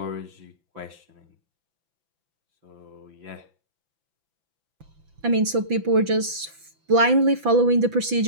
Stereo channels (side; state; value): left; late; 5.9 ms